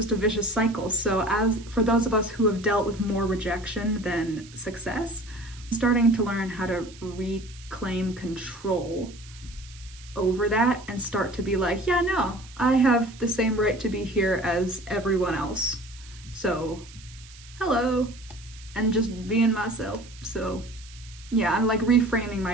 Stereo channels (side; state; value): right; noise; hiss, 21 dB below the sound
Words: a vicious cycle. So as for those of us who have dealt with more rejection than success, starting to learn how to reclaim control over that and start to be like, yeah, no, I have the same right to be here as everyone else. So, hello, and just being myself. So, yeah, I'm like reframing